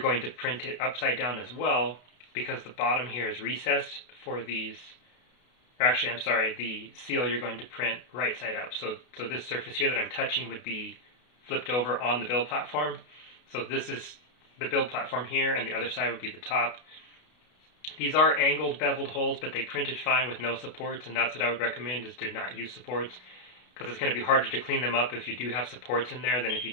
to print it upside down as well, because the bottom here is recessed for these, or actually, I'm sorry, the seal you're going to print right side up. So this surface here that I'm touching would be flipped over on the build platform. So this is the build platform here, and the other side would be the top. These are angled beveled holes, but they printed fine with no supports, and that's what I would recommend, is to not use supports, because it's going to be harder to clean them up if you do have supports in there than if you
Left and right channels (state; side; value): late; right; 32 ms